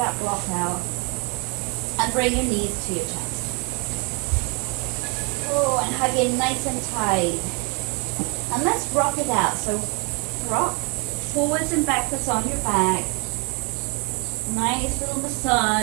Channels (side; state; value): left; quieter; 32.1 dB